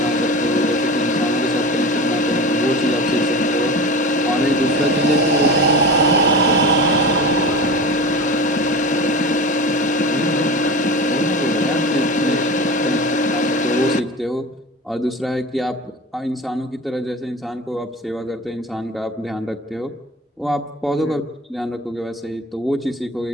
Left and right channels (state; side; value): normal; both; correlation 0.32